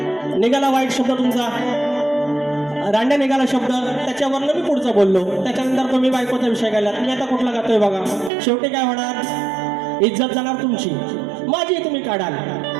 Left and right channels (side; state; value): left; drops out; at 8.3 s